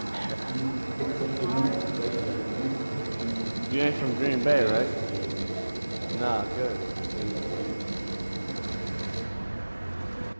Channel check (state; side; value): inverted; both; correlation -1.00